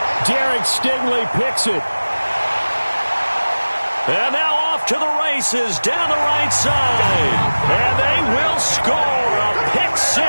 Derek Stingley picks it. And now off to the races down the right side. And they will score a pick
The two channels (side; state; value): both; inverted; correlation -1.00